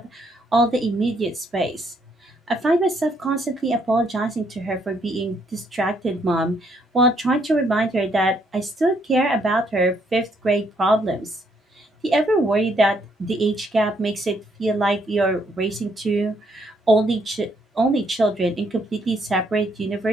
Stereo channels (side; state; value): both; normal; correlation 0.71